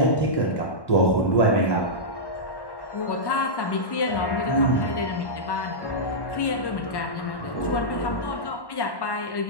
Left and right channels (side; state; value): right; late; 1.1 ms